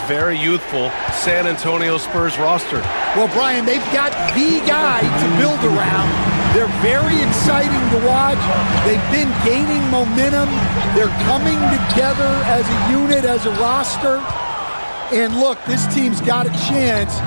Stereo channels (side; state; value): both; inverted; correlation -1.00